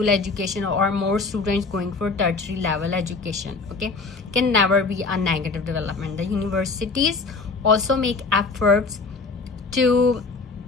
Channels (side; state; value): right; quieter; 4.2 dB